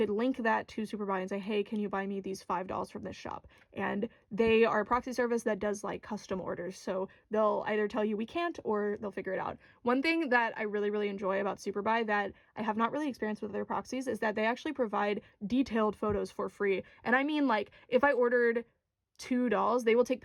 link that to SuperBuy and say, hey, can you buy me these $5 from this shop? And they are a proxy service that does custom orders. So they'll either tell you we can't or they'll figure it out. One thing that I really, really enjoy about SuperBuy that I have not really experienced with other proxies is that they actually provide detailed photos for free. And I mean, if I ordered 2 dolls, they will take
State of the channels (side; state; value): both; identical; correlation 1.00